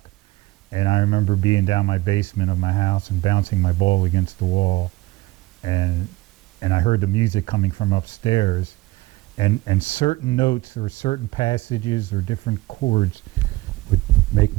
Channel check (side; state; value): left; quieter; 19.3 dB